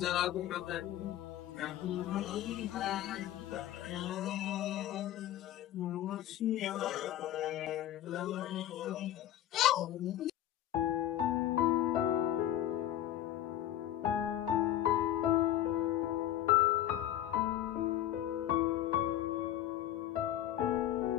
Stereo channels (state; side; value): quieter; right; 12.5 dB